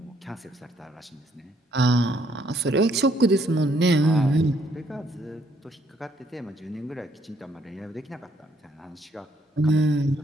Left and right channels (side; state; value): both; normal; correlation 0.69